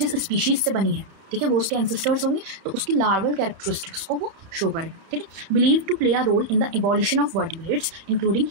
स्पीशीज़ से बनी है, ठीक है, वो उसके एंसेस्टर्स होंगे तो उसकी लार्वल कैरेक्टरिस्टिक्स को वो शो करेगा, ठीक है। Believe to play a role in the evolution of vertebrates including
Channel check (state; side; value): late; left; 31 ms